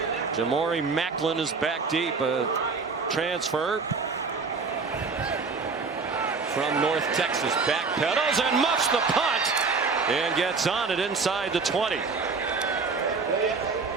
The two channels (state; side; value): quieter; left; 4.6 dB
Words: Jamori Macklin is back deep, a transfer from North Texas. Backpedals and muffs the punt and gets on it inside the 20.